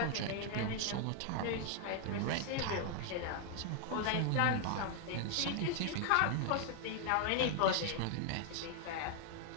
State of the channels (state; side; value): different; both; correlation 0.01